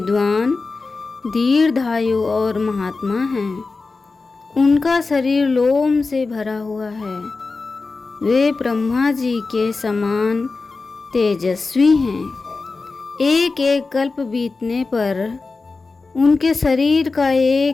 दीर्घायु और महात्मा हैं। उनका शरीर लोम से भरा हुआ है। वे ब्रह्मा जी के समान तेजस्वी हैं। एक एक कल्प बीतने पर उनके शरीर का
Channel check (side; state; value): right; quieter; 3.9 dB